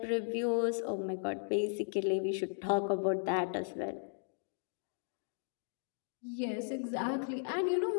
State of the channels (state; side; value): silent; right; digital silence